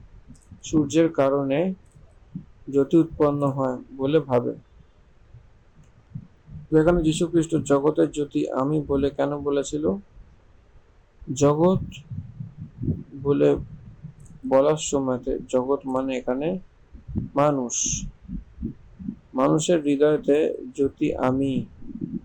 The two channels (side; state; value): both; identical; correlation 1.00